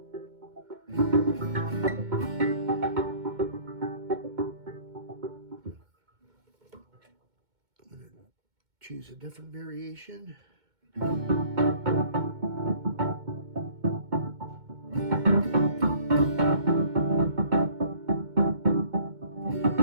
Choose a different variation.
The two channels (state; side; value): late; left; 2.2 ms